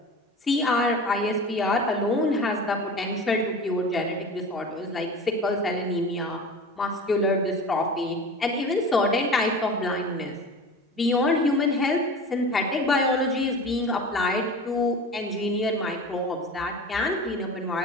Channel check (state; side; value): normal; both; correlation 0.35